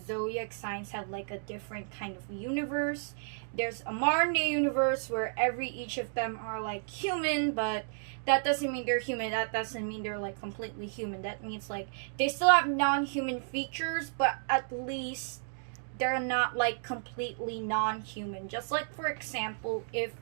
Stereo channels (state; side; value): silent; left; digital silence